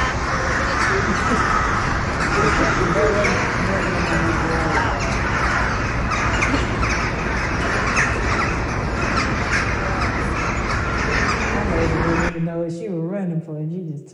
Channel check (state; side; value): identical; both; correlation 1.00